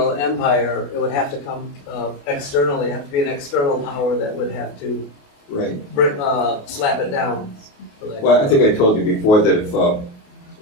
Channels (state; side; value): late; right; 28 ms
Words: empire, it would have to come externally. It would have to be an external power that would have to Right. slap it down. Well, I think I told you before that if